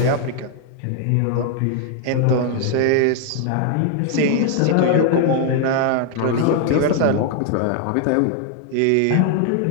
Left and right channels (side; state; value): both; different; correlation 0.00